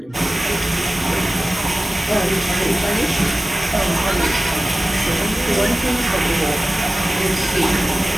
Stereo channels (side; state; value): both; normal; correlation 0.95